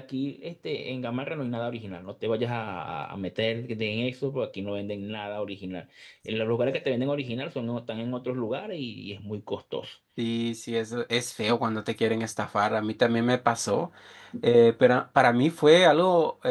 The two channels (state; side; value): identical; both; correlation 1.00